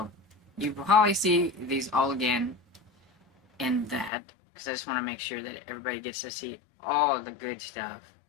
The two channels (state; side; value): drops out; right; at 4.1 s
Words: you will probably see these all again in that, because I just want to make sure that everybody gets to see all of the good stuff.